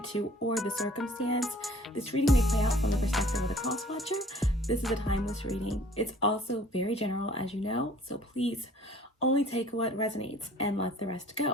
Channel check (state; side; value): normal; both; correlation 0.53